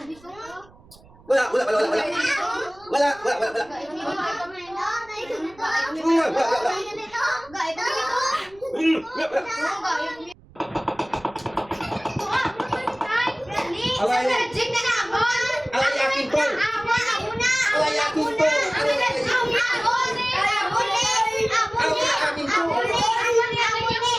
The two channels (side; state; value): right; noise; rumble, 26 dB below the sound